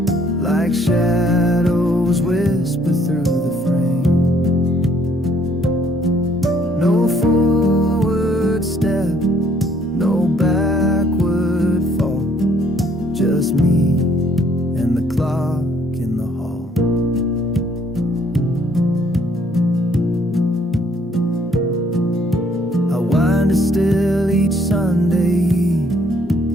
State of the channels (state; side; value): normal; both; correlation 0.64